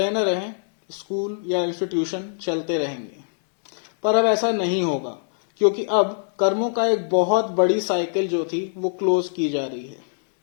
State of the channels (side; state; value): right; silent; digital silence